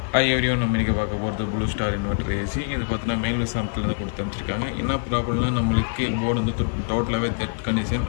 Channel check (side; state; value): right; quieter; 38.6 dB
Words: ஐவரியும் நம்ம இன்றைக்கி பார்க்க போகிறது ப்ளூ ஸ்டார் இன்வெர்டர் ஏசி. இது பார்த்தீங்கன்னா மேல் விசாரத்துலேருந்து கொடுத்து அனுப்பிச்சிருக்காங்க. என்ன ப்ராப்ளம்னா நம்மளுக்கு போர்டு வந்து டோட்டலாகவே டெட் கண்டிஷன்.